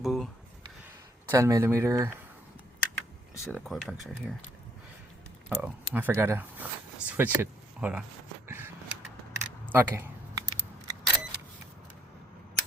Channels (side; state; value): both; normal; correlation 0.66